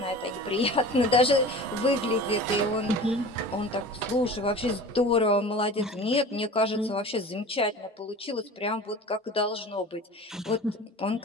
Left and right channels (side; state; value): both; normal; correlation 0.38